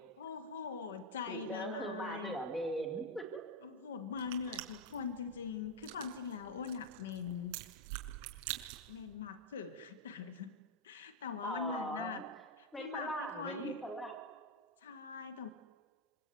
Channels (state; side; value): normal; both; correlation 0.03